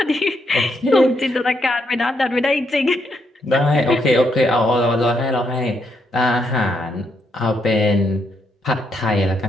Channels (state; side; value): normal; both; correlation 0.77